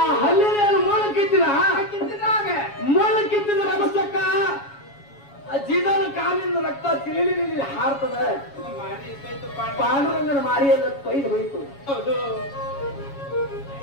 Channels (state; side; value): late; right; 7.2 ms